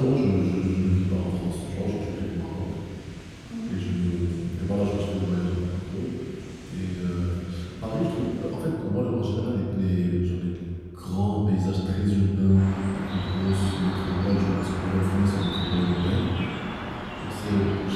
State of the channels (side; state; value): both; identical; correlation 1.00